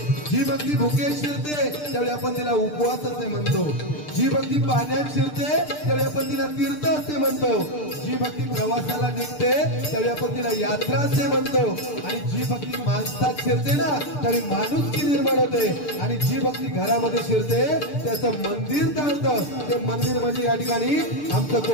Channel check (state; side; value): late; right; 6.7 ms